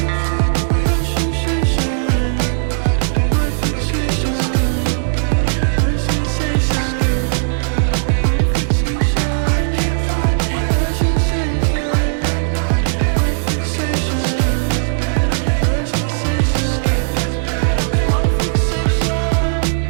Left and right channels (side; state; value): left; silent; digital silence